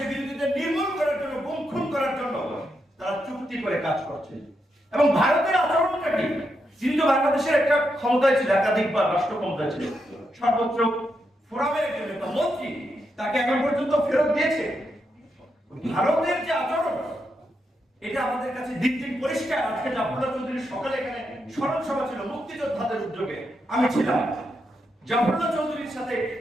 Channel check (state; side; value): normal; both; correlation 0.83